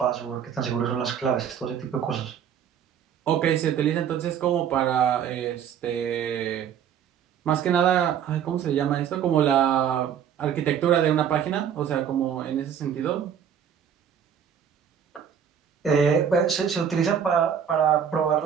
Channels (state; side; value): quieter; left; 8.4 dB